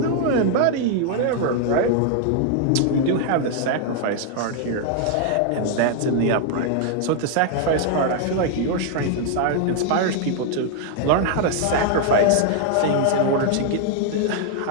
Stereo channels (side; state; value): both; different; correlation 0.00